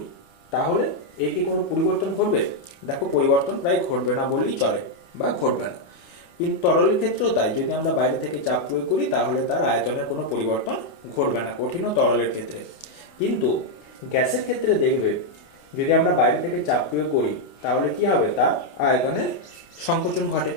তাহলে এর কি কোনো পরিবর্তন ঘটবে? দেখো, পরিবর্তন প্রায় ঘটবে না বললেই চলে বা ঘটবে না। কিন্তু তরলের ক্ষেত্রেও তাই, যদি আমরা বাইরে থেকে চাপ প্রয়োগ করি তাহলে তার আয়তনের কোনো পরিবর্তন ঘটবে না, কঠিন ও তরলের ক্ষেত্রে। কিন্তু গ্যাসের ক্ষেত্রে দেখবে, যদি আমরা বাইরে থেকে চাপ প্রয়োগ করি তাহলে কি হবে, তার আয়তনের সংকোচন ঘটে,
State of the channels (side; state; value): right; late; 29 ms